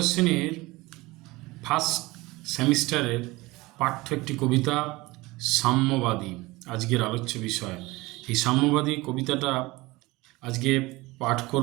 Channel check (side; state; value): left; quieter; 21.3 dB